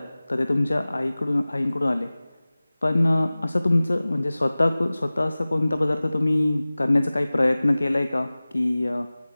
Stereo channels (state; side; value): inverted; both; correlation -0.99